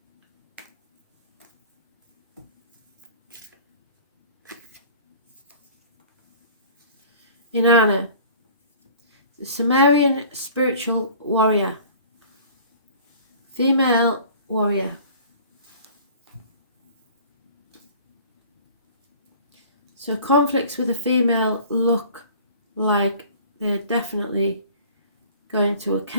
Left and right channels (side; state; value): both; inverted; correlation -0.47